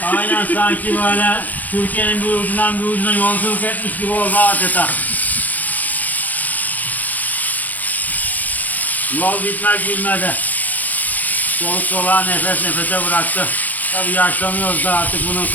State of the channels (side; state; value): right; late; 0.081 ms